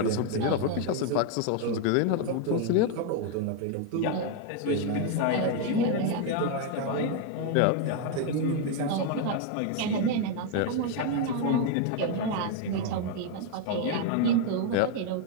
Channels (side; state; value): both; different; correlation 0.01